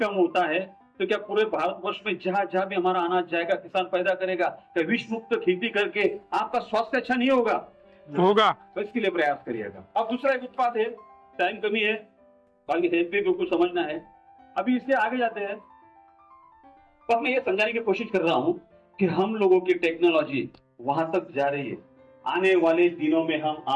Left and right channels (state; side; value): identical; both; correlation 1.00